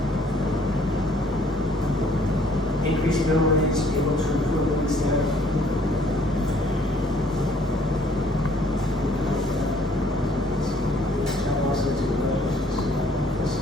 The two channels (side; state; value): both; normal; correlation 0.61